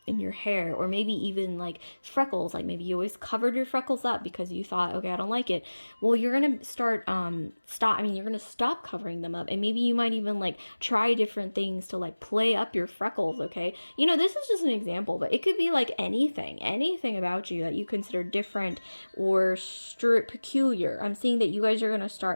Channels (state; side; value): inverted; both; correlation -1.00